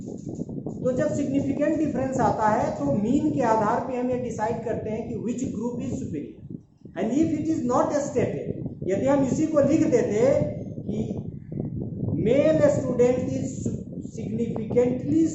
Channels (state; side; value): identical; both; correlation 1.00